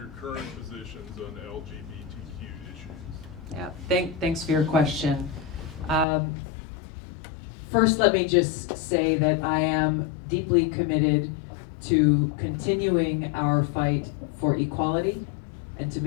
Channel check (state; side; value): drops out; right; at 6.1 s